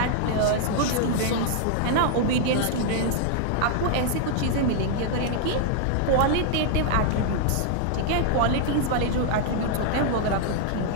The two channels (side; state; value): both; different; correlation -0.01